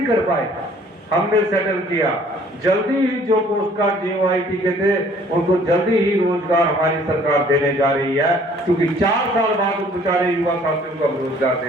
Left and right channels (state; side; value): normal; both; correlation 0.56